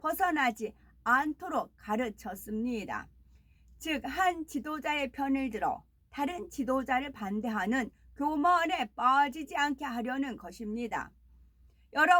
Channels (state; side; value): identical; both; correlation 1.00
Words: 않도록 가르쳤습니다. 즉, 한 지도자의 편을 들어 다른 지도자를 반대하는 교만에 빠지지 않게 하려는 것입니다.